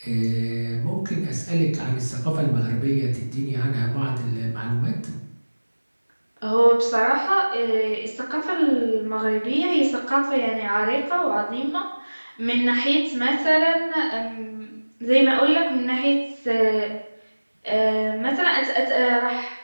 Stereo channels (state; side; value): inverted; both; correlation -1.00